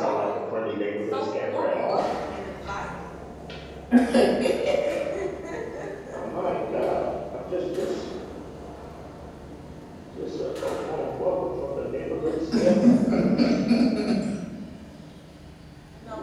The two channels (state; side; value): identical; both; correlation 1.00